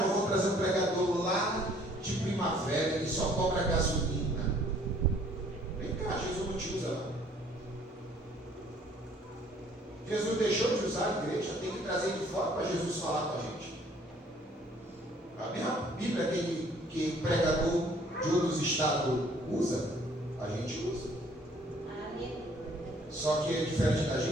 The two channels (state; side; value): normal; both; correlation 0.59